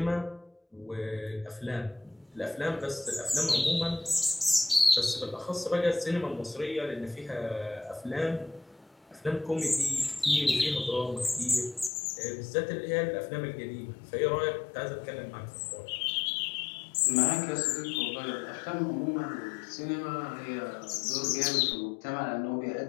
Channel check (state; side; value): drops out; right; at 11.9 s